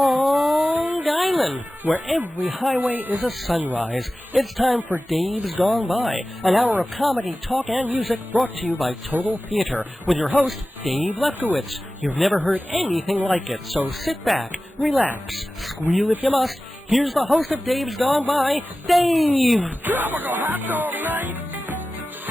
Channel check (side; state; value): both; normal; correlation 0.96